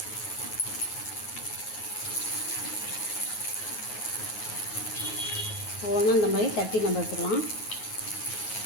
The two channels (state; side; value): late; right; 9.4 ms